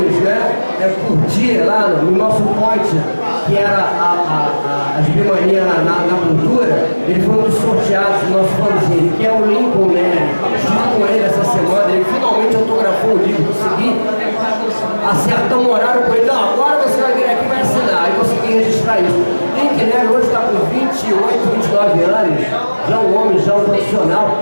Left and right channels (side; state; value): both; inverted; correlation -1.00